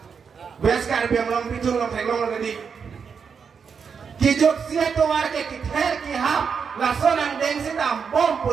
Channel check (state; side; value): quieter; left; 6.2 dB